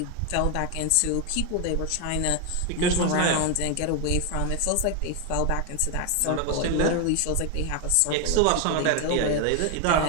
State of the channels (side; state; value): both; different; correlation 0.01